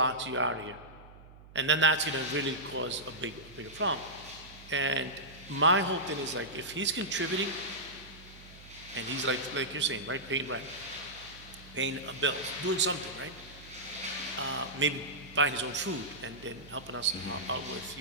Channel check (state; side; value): noise; right; hum, 20 dB below the sound